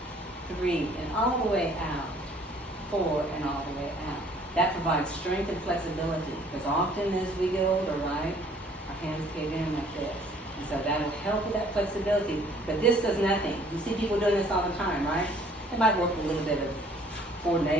3, and all the way out. 4, and all the way out. That provides strength and flexibility, because often as we get older, right, our hands cave in like this. And so that'll help with that flexibility. But this does nothing. You see people doing this all the time, right? It might work a little bit of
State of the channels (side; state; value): both; normal; correlation 0.57